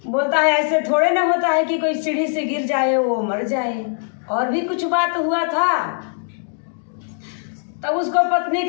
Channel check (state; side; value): silent; right; digital silence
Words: बोलता है ऐसे थोड़े ना होता है कि कोई सीढ़ी से गिर जाए वो मर जाए, और भी कुछ बात हुआ था। तब उसको पत्नी